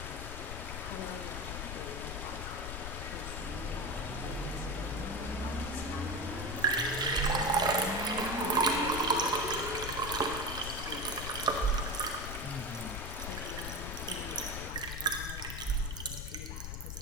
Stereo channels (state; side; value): noise; left; rumble, 6 dB below the sound